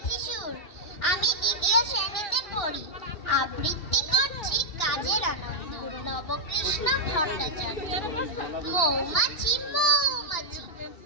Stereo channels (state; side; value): late; right; 2.7 ms